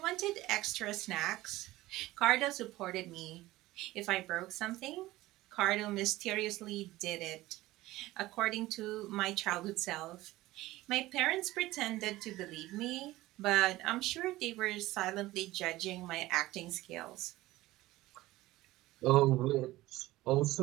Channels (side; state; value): left; quieter; 17.6 dB